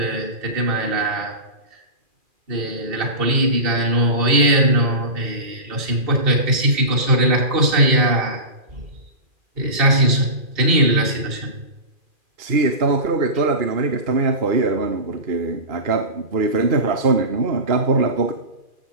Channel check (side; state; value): left; late; 2.4 ms